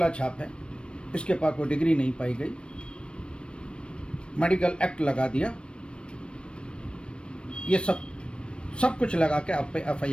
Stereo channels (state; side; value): late; right; 0.057 ms